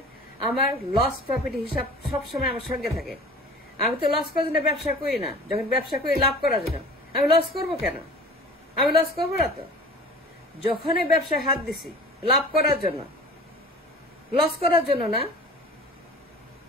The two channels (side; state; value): both; normal; correlation 0.41